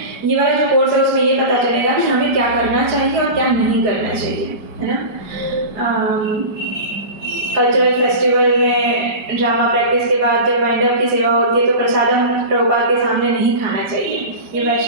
ये वाला जो कोर्स है उसमें ये पता चलेगा कि हमें क्या करना चाहिए और क्या नहीं करना चाहिए, है ना। कल्चरल फेस्टिवल में ड्रामा प्रैक्टिस के बाद जब वाइंड अप की सेवा होती है तो प्रसादम प्रभुपाद के सामने नहीं खाना चाहिए, ये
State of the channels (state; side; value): late; left; 5.0 ms